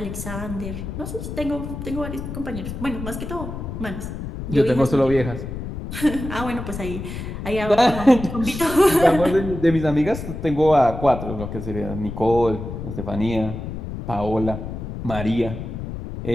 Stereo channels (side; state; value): left; noise; rumble, 7 dB below the sound